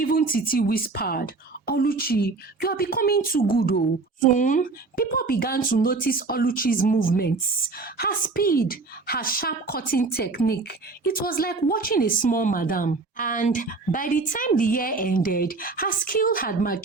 Titi whispered, "Oluchi, you are becoming too good." Soon, people began to notice Oluchi's movements, her speed, her sharp cutting technique. It was like watching a small madam. And by the time the year ended, her skill had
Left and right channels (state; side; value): quieter; left; 3.8 dB